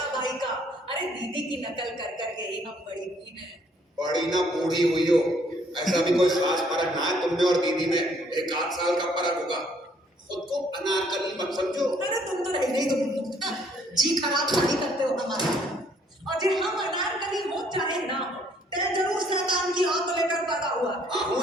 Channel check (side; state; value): both; normal; correlation 0.64